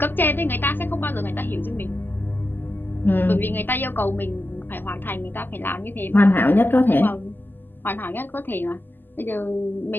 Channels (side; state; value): right; late; 0.092 ms